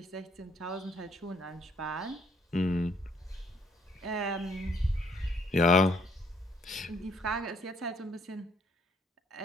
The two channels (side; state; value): both; normal; correlation 0.66